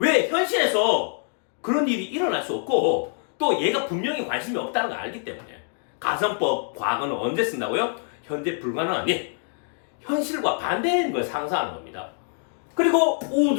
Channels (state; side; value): silent; right; 59 dB below the other